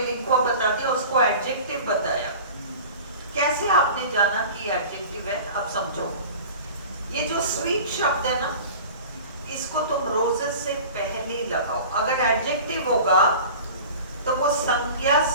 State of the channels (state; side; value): inverted; both; correlation -0.39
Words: लिंक्वर्ब बता दिया, उसको एडजेक्टिव बताया। कैसे आपने जाना कि एडजेक्टिव है? अब समझो, ये जो स्वीट शब्द है ना, इसको तुम रोजेस से पहले लगाओ। अगर एडजेक्टिव होगा तो वो संज्ञा